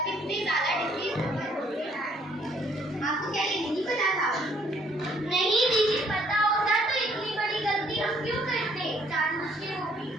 कितनी ज्यादा डिसीज आपको क्या ये नहीं पता था? नहीं दीदी पता होता तो इतनी बड़ी गलती हम क्यों करते, जानबूझ के वो भी।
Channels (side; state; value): both; normal; correlation 0.64